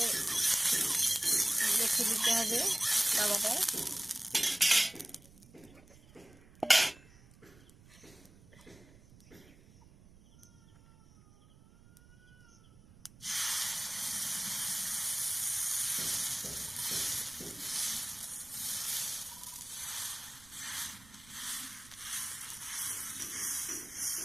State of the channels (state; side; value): noise; right; rumble, 24 dB below the sound